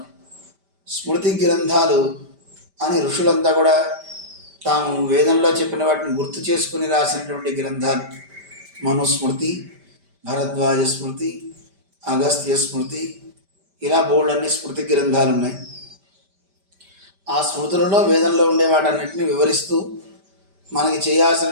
స్మృతి గ్రంథాలు అని ఋషులంతా కూడా తాము వేదంలో చెప్పిన వాటిని గుర్తు చేసుకుని రాసినటువంటి గ్రంథాలు. మనుస్మృతి, భరద్వాజ స్మృతి, అగస్త్య స్మృతి, ఇలా బోల్డన్ని స్మృతి గ్రంథాలు ఉన్నాయి. ఆ స్మృతులలో వేదంలో ఉండే వాటన్నిటిని వివరిస్తూ మనకి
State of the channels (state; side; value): late; left; 5.1 ms